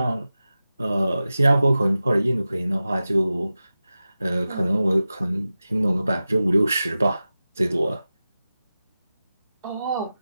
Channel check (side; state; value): both; inverted; correlation -0.94